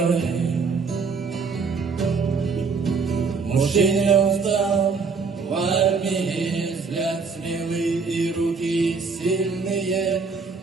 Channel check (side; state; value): left; quieter; 4.9 dB